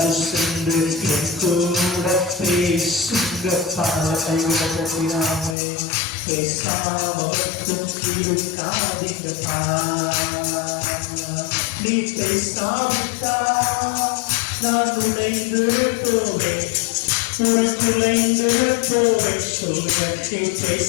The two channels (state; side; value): drops out; right; at 5.6 s